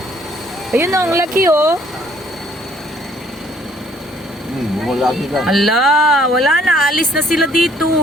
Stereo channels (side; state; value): both; normal; correlation 0.62